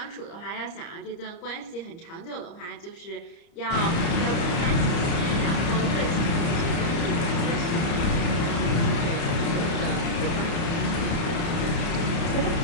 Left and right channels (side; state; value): right; late; 30 ms